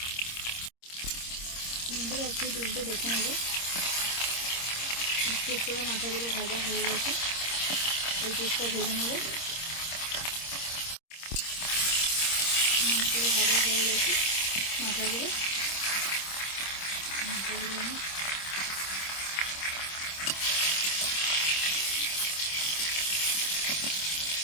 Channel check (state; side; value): late; right; 26 ms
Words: বন্ধুরা, একটু তুলতে দেখে নেব। একটু করে মাথাগুলো ভাজা হয়ে গেছে। এই পিসটা ভেজে নেব। মাছগুলো ভাজা হয়ে গেছে। মাথাগুলো আমি